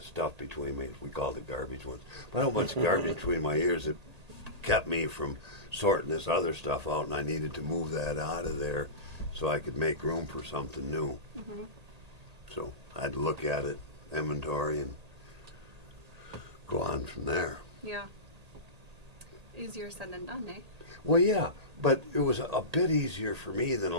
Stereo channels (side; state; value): left; late; 1.8 ms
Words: stuff between me. We called it garbage ones. But I had a bunch of garbage between my ears that kept me from sorting this other stuff out, and I needed to move that out of there so I could make room for something new. So I had to look at it, inventory, and go on from there. Yeah. Easier said than done, eh? Well, yeah, but it was a bit easier for me than